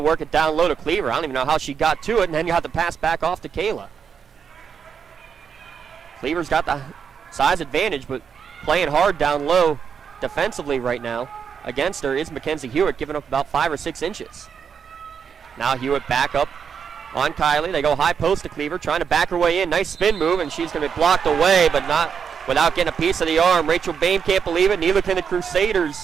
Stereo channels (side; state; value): left; quieter; 6.9 dB